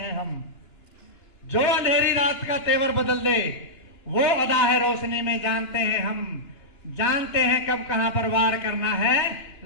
हम। जो अंधेरी रात का तेवर बदल दे वो अदा है रोशनी में जानते हैं हम। जानते हैं कब कहां पर वार करना है,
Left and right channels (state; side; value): late; right; 2.9 ms